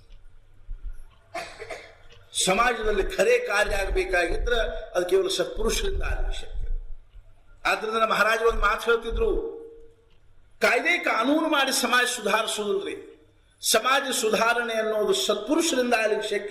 ಸಮಾಜದಲ್ಲಿ ಖರೆ ಕಾರ್ಯ ಆಗಬೇಕಾಗಿದ್ರೆ ಅದು ಕೇವಲ ಸತ್ಪುರುಷರಿಂದ ಆಗಬೇಕು. ಆದ್ರಿಂದ ಮಹಾರಾಜರು ಒಂದು ಮಾತು ಹೇಳ್ತಿದ್ರು, ಕಾಯ್ದೆ ಕಾನೂನು ಮಾಡಿ ಸಮಾಜ ಸುಧಾರಿಸುವುದಿಲ್ರಿ, ಸಮಾಜ ಸುಧಾರಣೆ ಅನ್ನೋದು ಸತ್ಪುರುಷರಿಂದ ಆಗ್ಲಿಕ್ಕೆ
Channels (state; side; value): identical; both; correlation 1.00